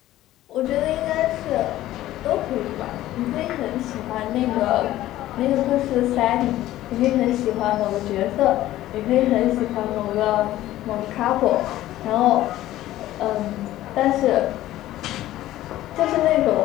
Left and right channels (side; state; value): right; quieter; 14.7 dB